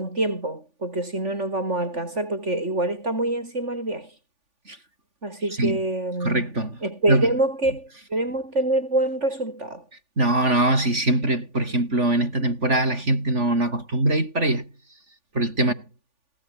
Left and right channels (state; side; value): late; left; 3.5 ms